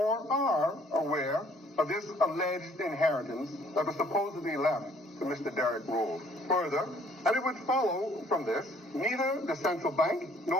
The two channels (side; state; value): both; normal; correlation 0.60